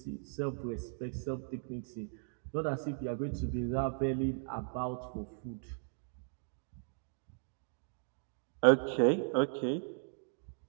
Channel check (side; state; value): left; silent; digital silence